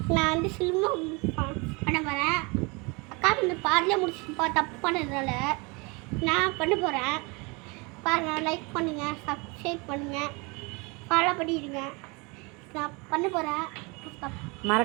நான் வந்து சில்வம் பண்ண போகிறேன். அக்கா வந்து பாதிலே முடிச்சுப்பா தப்பு பண்ணதுனால நான் பண்ண போகிறேன். பாருங்கள், லைக் பண்ணுங்கள், சப்ஸ்கிரைப் பண்ணுங்கள், ஃபாலோ பண்ணிடுங்க. நான் பண்ண போகிறேன்.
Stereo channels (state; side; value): quieter; left; 28.3 dB